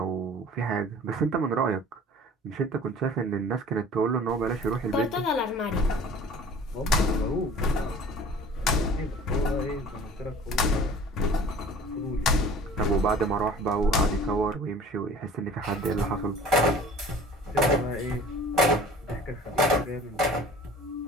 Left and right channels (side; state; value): both; normal; correlation 0.46